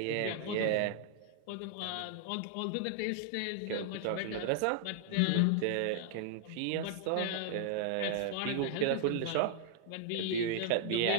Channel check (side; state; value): both; different; correlation 0.00